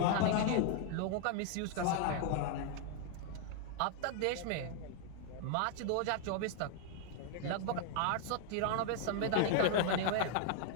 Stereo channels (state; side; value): different; both; correlation 0.00